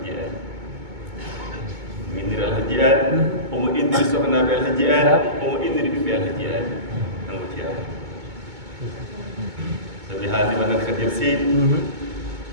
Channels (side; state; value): left; late; 2.2 ms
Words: aadi indiri alhaji aadi omo indiri sohnaɓe alhaji aadi omo indiri ɓiɓɓe alhaji aadi kanko ceerno sabi haaldima nan kadir seydi